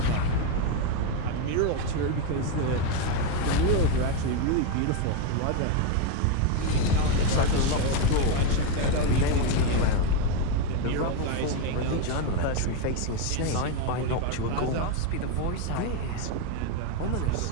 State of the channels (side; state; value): both; different; correlation 0.02